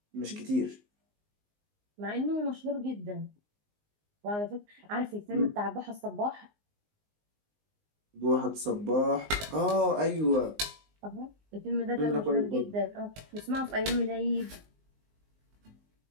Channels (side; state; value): left; late; 19 ms